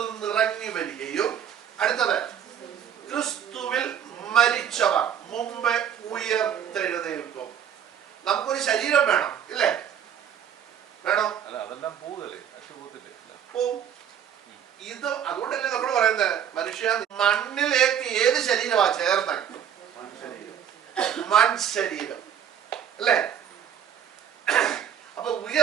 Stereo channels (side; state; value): left; quieter; 9.0 dB